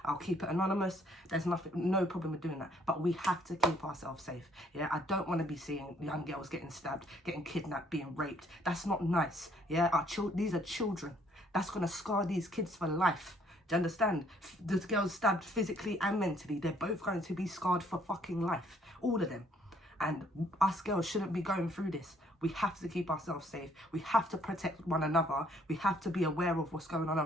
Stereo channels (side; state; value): both; normal; correlation 0.64